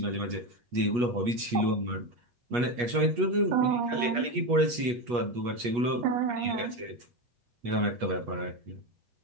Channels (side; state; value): left; late; 8.3 ms